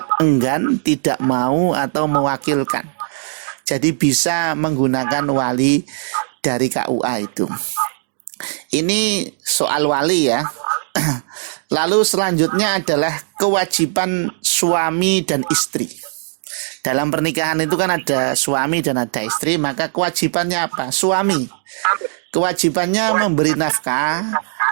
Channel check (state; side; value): silent; left; digital silence